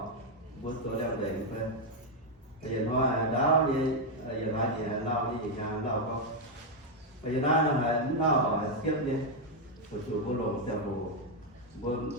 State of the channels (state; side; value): normal; both; correlation 0.01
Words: vua tôi đang để phải bây giờ hoa đáo đi giờ lại gì lau đi nhà lau không bây giờ nó là nó ở xếp đi một chủ vô lồng xe bồ